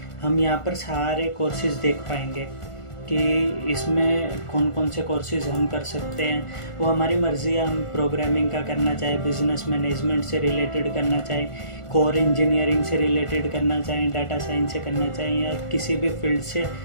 हम यहाँ पर सारे कोर्सेज़ देख पाएंगे कि इसमें कौन कौन से कोर्सेज़ हम कर सकते हैं। वो हमारी मर्ज़ी है, हम प्रोग्रामिंग का करना चाहे, बिज़नेस मैनेजमेंट से रिलेटेड करना चाहे, कोर इंजीनियरिंग से रिलेटेड करना चाहें, डाटा साइंस से करना चाहें, या किसी भी फील्ड से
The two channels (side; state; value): right; late; 1.4 ms